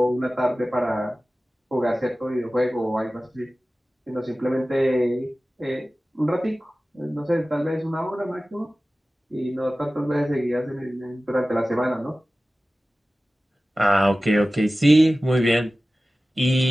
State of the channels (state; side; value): normal; both; correlation 0.96